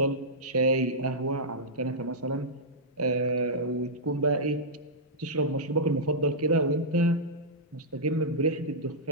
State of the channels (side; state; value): both; normal; correlation -0.11